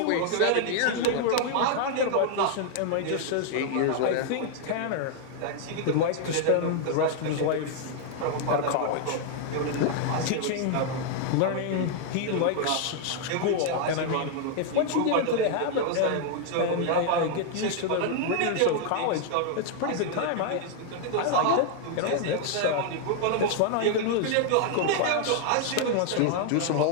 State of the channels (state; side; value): different; both; correlation 0.00